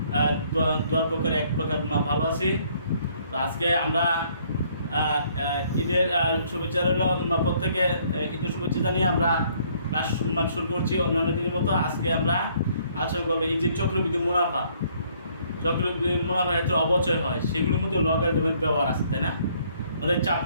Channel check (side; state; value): both; inverted; correlation -0.64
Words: দোয়ার প্রকারে এক প্রকার ভালো আছি। তো আজকে আমরা ঈদের শুভেচ্ছা রইল, প্রত্যেকে ঈদের শুভেচ্ছা জানিয়ে আমরা ক্লাস শুরু করছি। অন্যান্য দিনের মতো আজকে আমরা আলোচনা করবো এই যে চক্রবৃদ্ধি মুনাফা ক্ষেত্রে অবচয় হয়, সেগুলোর মধ্যে লগারিদমের ব্যবহার আছে, তাই না? আমাদের